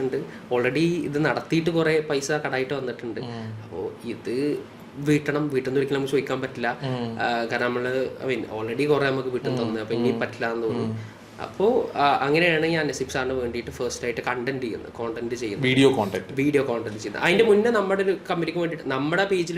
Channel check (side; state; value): both; identical; correlation 1.00